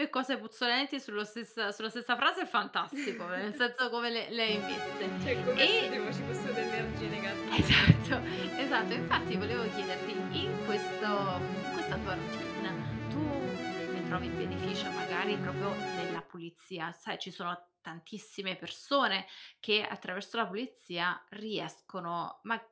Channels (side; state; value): both; identical; correlation 1.00